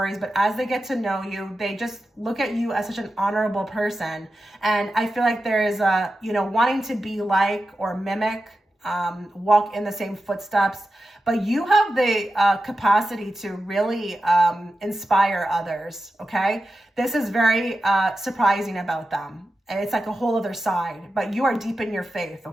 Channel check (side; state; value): both; normal; correlation 0.92